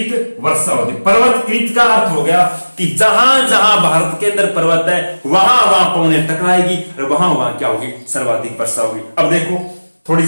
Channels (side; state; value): both; inverted; correlation -1.00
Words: वर्षा होती है। पर्वत कृत का अर्थ हो गया कि जहां जहां भारत के अंदर पर्वत है वहां वहां पवनें टकराएगी और वहां वहां क्या होगी, सर्वाधिक वर्षा होगी। अब देखो थोड़ी